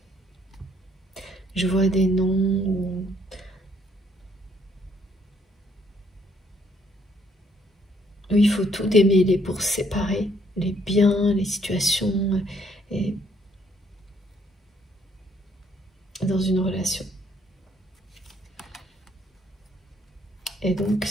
Je vois des noms... où il faut tout démêler pour séparer les biens, les situations, et dans une relation. Et donc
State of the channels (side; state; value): both; normal; correlation 0.67